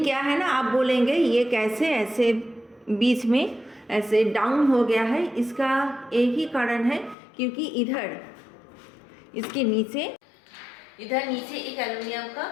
क्या है ना, आप बोलेंगे ये कैसे ऐसे बीच में ऐसे डाउन हो गया है। इसका एक ही कारण है, क्योंकि इधर इसके नीचे एक एल्युमिनियम का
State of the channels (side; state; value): right; drops out; at 7.2 s